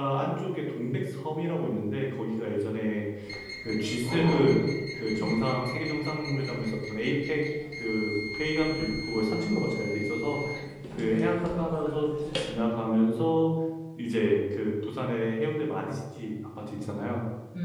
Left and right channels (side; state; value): both; identical; correlation 1.00